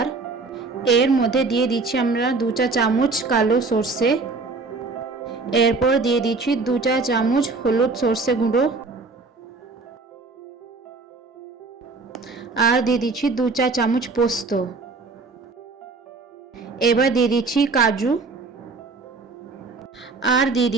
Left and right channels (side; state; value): left; quieter; 4.0 dB